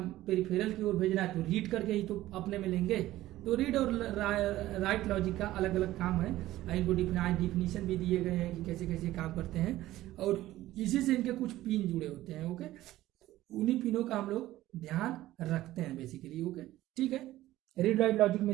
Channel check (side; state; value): left; quieter; 15.5 dB